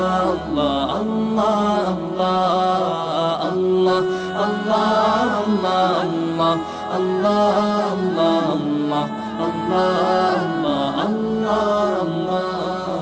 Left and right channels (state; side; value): identical; both; correlation 1.00